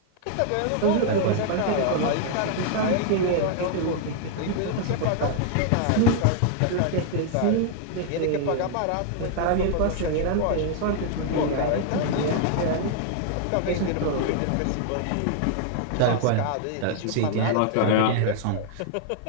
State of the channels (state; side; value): different; both; correlation 0.00